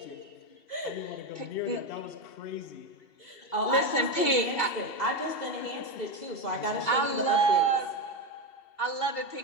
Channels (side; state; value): right; late; 2.7 ms